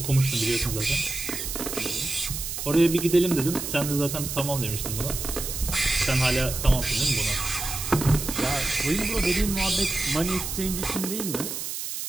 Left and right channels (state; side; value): noise; right; hiss, 5 dB below the sound